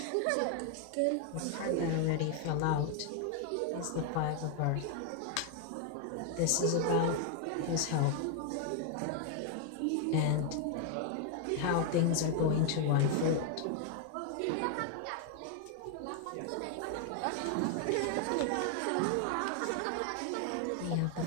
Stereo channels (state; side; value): different; both; correlation 0.00